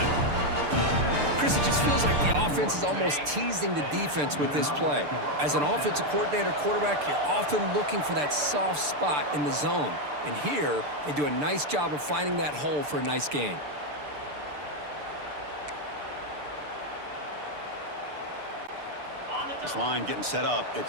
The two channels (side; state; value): left; late; 6.8 ms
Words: Chris, it just feels like the offense is almost teasing the defense with this play. As an offensive coordinator, quarterback, you're often looking for that soft spot in the zone. And here, they do a nice job of finding that hole for a nice gain. This line getting set up.